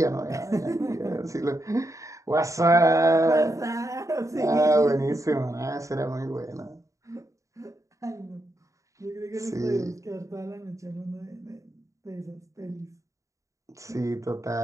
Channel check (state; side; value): late; left; 0.15 ms